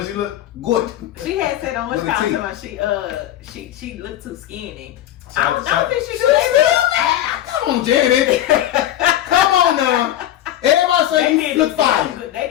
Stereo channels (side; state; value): right; quieter; 12.7 dB